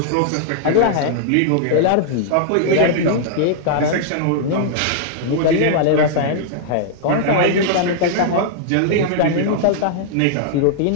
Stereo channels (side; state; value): both; different; correlation -0.01